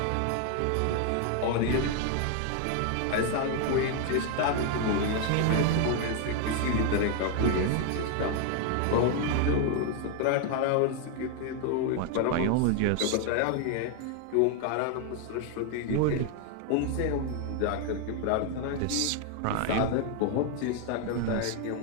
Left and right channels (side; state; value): both; different; correlation 0.01